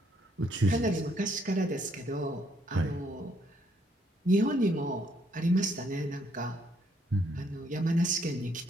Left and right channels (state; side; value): normal; both; correlation 0.70